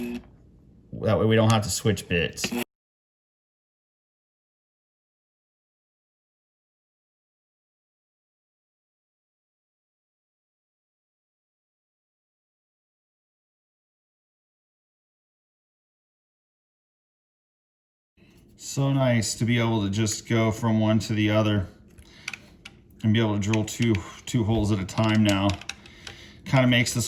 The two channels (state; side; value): identical; both; correlation 1.00